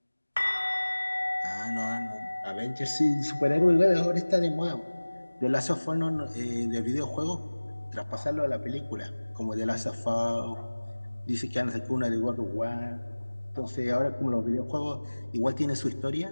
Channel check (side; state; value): both; inverted; correlation -1.00